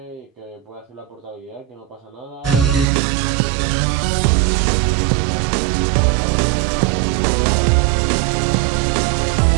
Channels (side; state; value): left; drops out; at 2.9 s